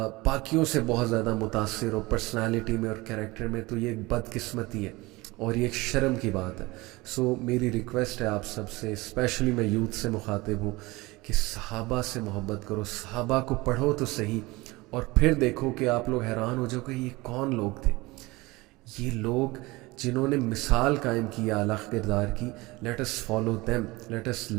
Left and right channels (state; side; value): quieter; left; 22.0 dB